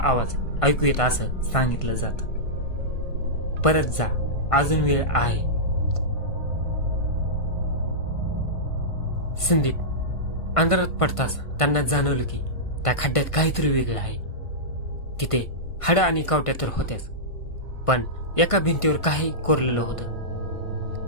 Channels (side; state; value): right; late; 1.5 ms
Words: ऐकू येत असं सांगितलं जातं. परत जा, अजून वेळ आहे. संदीप अंधारात पडताच त्यांना जाणवलं की त्या खड्ड्यात काहीतरी वेगळं आहे. तिथे हाडं आणि कावट्या तर होत्याच, पण एका भिंतीवर काही कोरलेलं होतं.